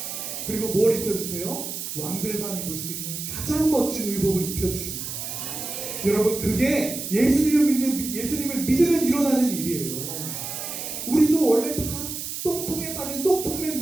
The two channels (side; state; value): right; noise; hiss, 6 dB below the sound